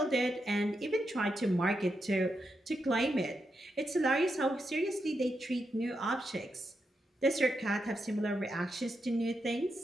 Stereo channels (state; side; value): normal; both; correlation 0.84